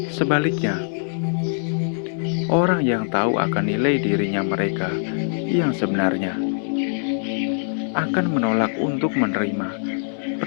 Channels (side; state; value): right; silent; digital silence